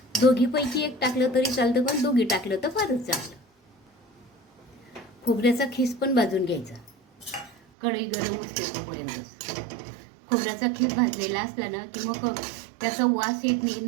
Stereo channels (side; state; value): left; drops out; at 7.6 s